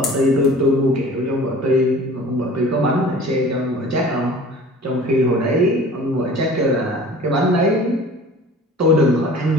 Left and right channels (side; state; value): both; normal; correlation 0.44